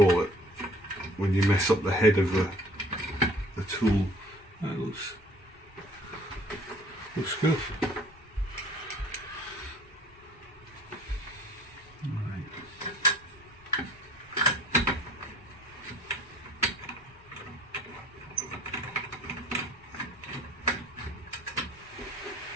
it, when you mess up the head of the tool. That looks good.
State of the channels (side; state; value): both; normal; correlation 0.52